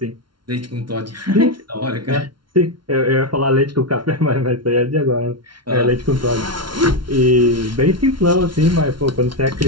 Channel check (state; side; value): late; left; 0.72 ms